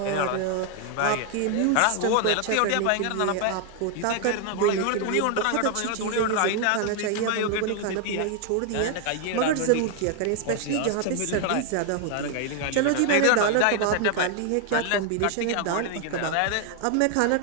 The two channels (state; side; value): different; both; correlation 0.00